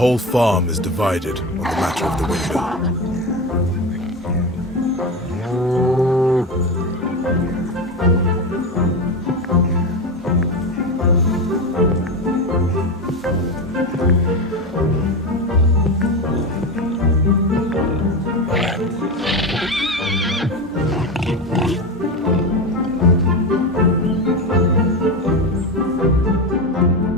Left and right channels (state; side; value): normal; both; correlation 0.19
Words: whole farm is divided on the matter of the windmill.